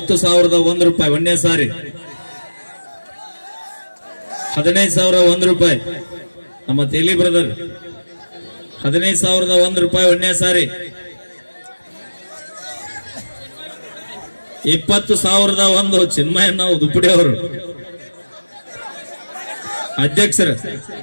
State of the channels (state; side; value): inverted; both; correlation -1.00